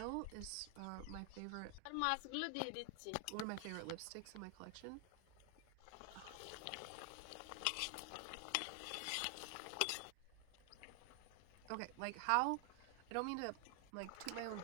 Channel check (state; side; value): different; both; correlation 0.00